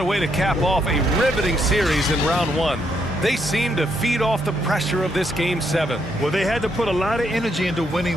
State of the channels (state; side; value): normal; both; correlation 0.76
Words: way to cap off a riveting series in round 1. They seem to feed off the pressure of this Game 7. Well, they had to put a lot of energy into